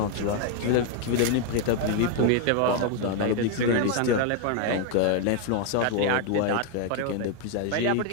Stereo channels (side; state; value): both; different; correlation 0.01